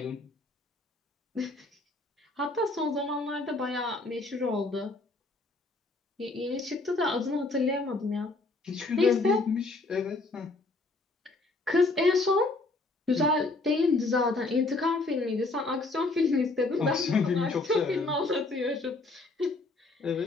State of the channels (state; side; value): quieter; right; 3.2 dB